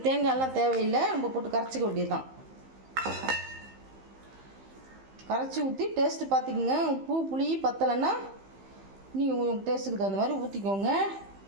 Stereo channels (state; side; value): late; left; 15 ms